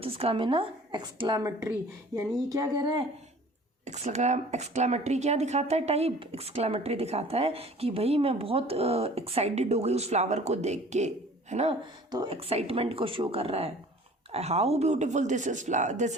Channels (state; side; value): normal; both; correlation 0.48